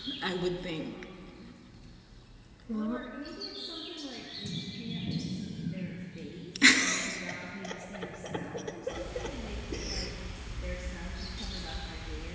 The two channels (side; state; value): both; identical; correlation 1.00